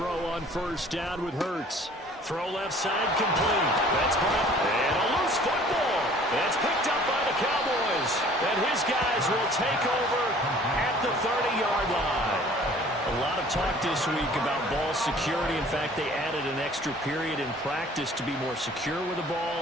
on first down with Hurts. Throw left side complete. That's Brown. And a loose football. That's picked up by the Cowboys. And his guys will take over at the 30-yard line. A lot of talk this week about ball security. In fact, they added an extra period in practice to be more secure with the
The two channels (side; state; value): both; normal; correlation 0.52